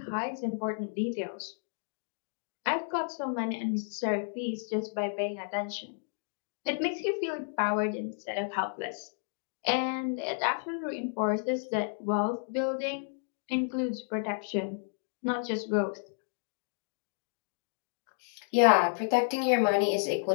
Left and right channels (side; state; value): right; silent; digital silence